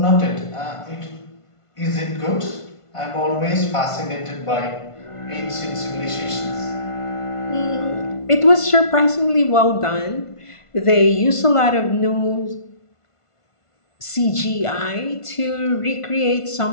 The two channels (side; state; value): right; late; 1.5 ms